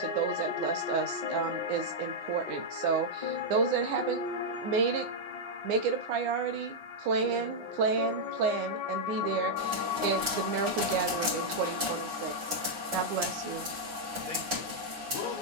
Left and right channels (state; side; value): late; left; 9.8 ms